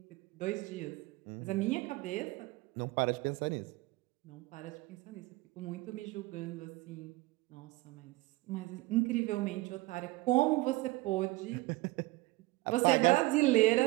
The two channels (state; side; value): quieter; left; 20.8 dB